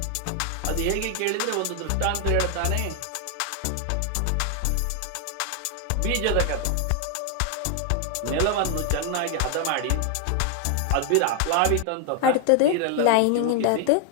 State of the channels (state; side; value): different; both; correlation 0.00